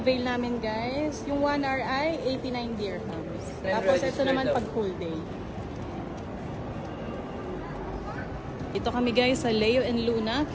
namin, guys. Yung 1 hour ay 89 dirhams. Tapos ito naman pag full day. Ito kami, guys, sa Leo and Luna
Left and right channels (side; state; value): both; identical; correlation 1.00